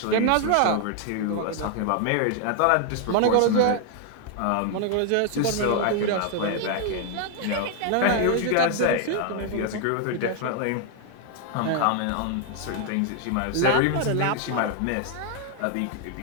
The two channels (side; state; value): both; different; correlation 0.00